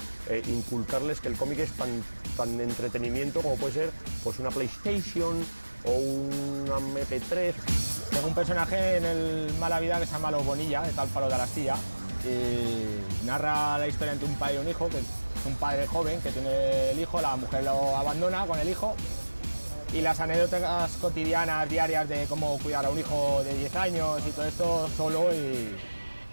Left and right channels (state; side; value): inverted; both; correlation -1.00